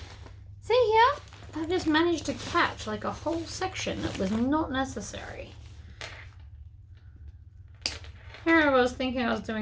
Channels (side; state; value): both; identical; correlation 1.00